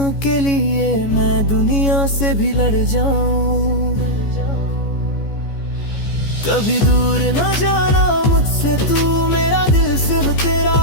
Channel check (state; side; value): late; right; 14 ms